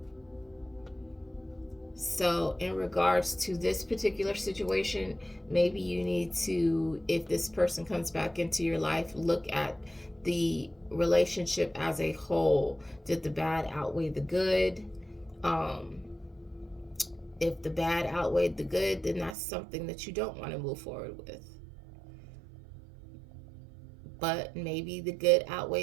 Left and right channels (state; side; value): drops out; left; at 19.4 s